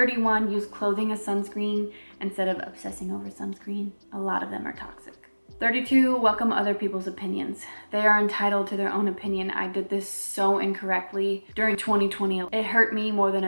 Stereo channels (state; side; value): inverted; both; correlation -1.00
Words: use clothing as sunscreen instead of obsessing over sunscreen. A lot of them are toxic. 32, welcome other people's opinions. They are entitled to their own opinion. I did this so incorrectly during 2020. It hurt me more than